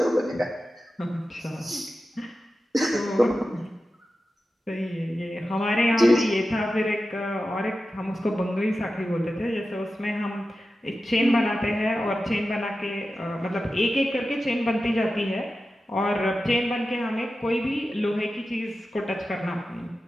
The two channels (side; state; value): both; normal; correlation 0.93